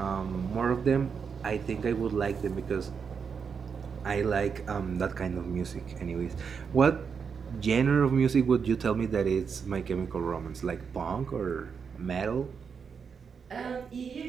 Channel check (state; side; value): quieter; left; 6.2 dB